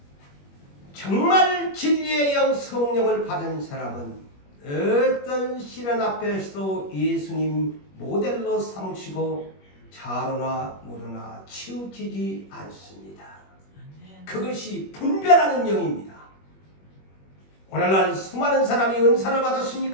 정말 진리의 영 성령을 받은 사람은 어떤 시련 앞에서도 예수님 모델로 삼으시고 자로나 무로나 치우치지 않습니다. 그것이 분별하는 영입니다. 오늘날 수많은 사람이 은사를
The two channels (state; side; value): late; right; 21 ms